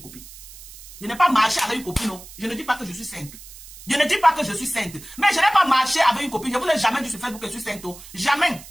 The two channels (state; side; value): noise; right; hiss, 17 dB below the sound